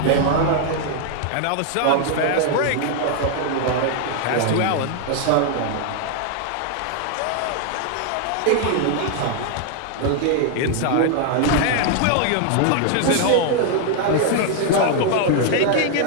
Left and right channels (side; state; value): both; different; correlation 0.00